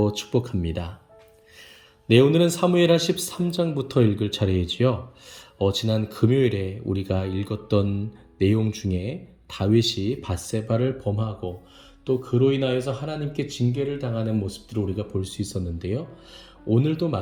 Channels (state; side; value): identical; both; correlation 1.00